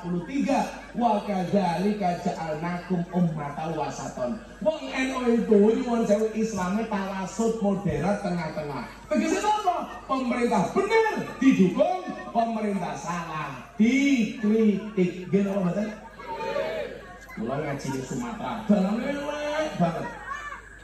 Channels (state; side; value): identical; both; correlation 1.00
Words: wa kadzalika ja'alnakum ummatan wasaton. Wong NU itu nyuwun sewu Islamnya tawasud moderat tengah-tengah. Tegese apa? Pemerintah benar didukung, pemerintah salah dikritik. Gini apa betul? Kula ngaji di Sumatera, dalam elek banget.